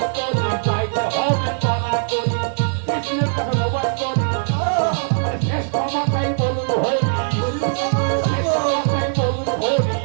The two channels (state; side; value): silent; left; 63 dB below the other